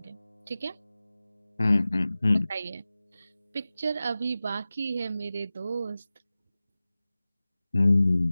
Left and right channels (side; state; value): both; inverted; correlation -0.96